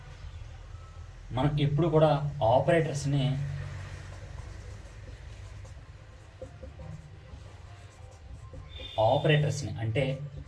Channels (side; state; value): both; identical; correlation 1.00